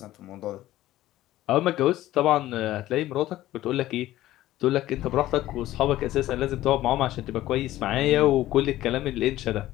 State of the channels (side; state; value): right; quieter; 15.0 dB